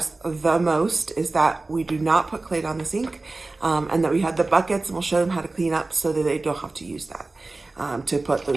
the most, is that we do not put clay down the sink, and that we have the buckets, and we'll show them how to clean up so that they don't have to use that, to put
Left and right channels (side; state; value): left; quieter; 3.3 dB